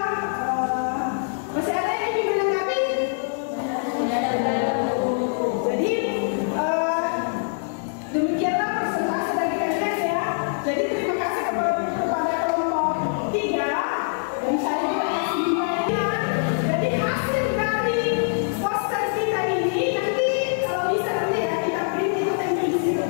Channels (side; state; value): right; silent; digital silence